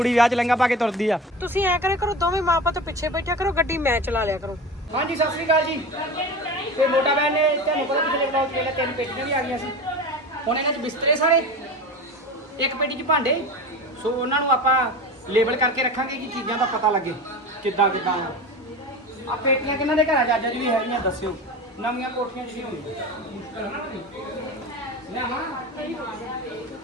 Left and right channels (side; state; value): both; normal; correlation 0.30